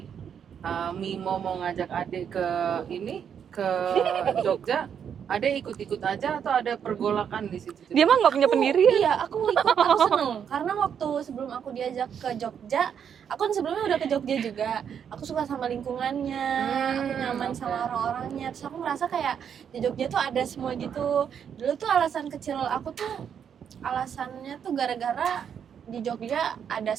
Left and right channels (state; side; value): quieter; left; 8.0 dB